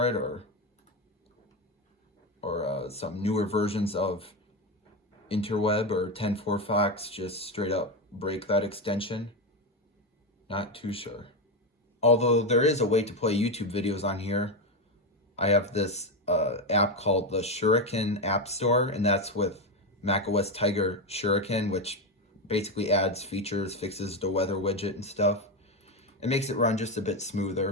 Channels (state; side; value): normal; both; correlation 0.12